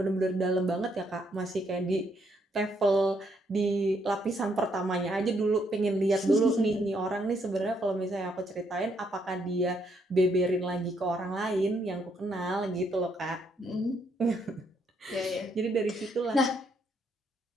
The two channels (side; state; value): both; normal; correlation 0.73